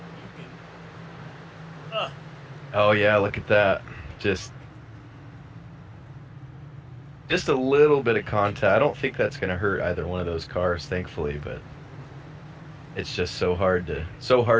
you can. Oh yeah, look at that. Just a little bit of contact. I don't think that's gonna hurt either one of those cars, thankfully, but it's just so hard to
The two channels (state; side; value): identical; both; correlation 1.00